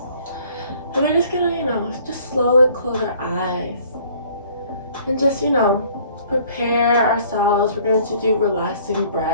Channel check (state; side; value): inverted; both; correlation -0.56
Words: And we're just going to, just slowly close our eyes and just, prepare ourselves. We're going to do relaxing